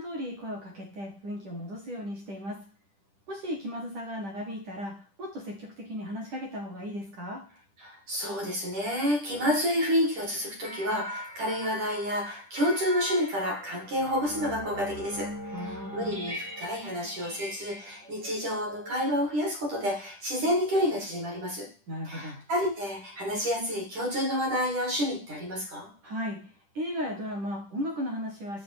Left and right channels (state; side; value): late; left; 10 ms